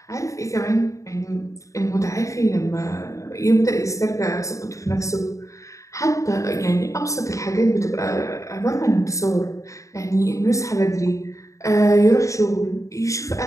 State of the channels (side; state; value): right; late; 0.15 ms